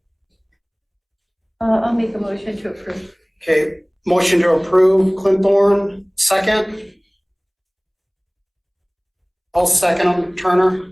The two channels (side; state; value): both; identical; correlation 1.00